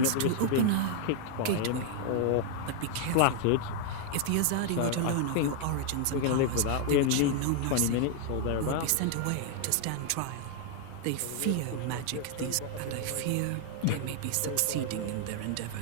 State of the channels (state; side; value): different; both; correlation 0.00